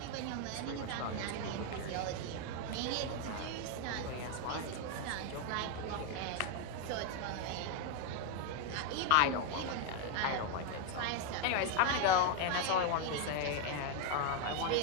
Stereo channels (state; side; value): different; both; correlation 0.01